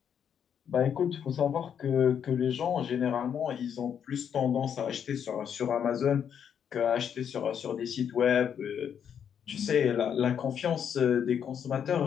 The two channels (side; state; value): right; quieter; 8.2 dB